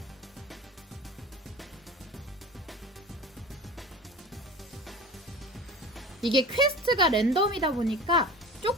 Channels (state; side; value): normal; both; correlation 0.36